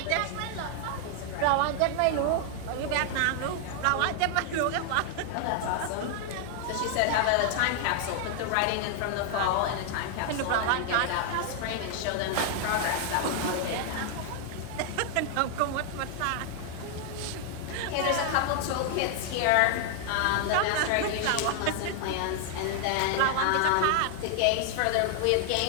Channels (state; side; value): different; both; correlation 0.00